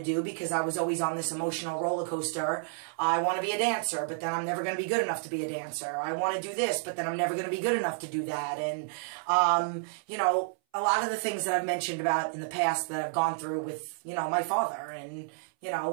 do because I was always on this emotional roller coaster. I want to be a dancer, but then I'm never going to be good enough to be a dancer. I want to do this, but then I'm never going to be good enough to do that. And, you know, a lot of the things that I've mentioned about in the past that I've gone through with, you know, my father and, you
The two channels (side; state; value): left; silent; 58 dB below the other